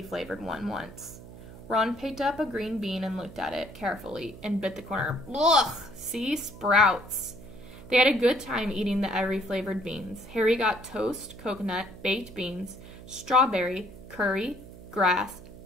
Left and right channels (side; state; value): right; noise; hum, 16 dB below the sound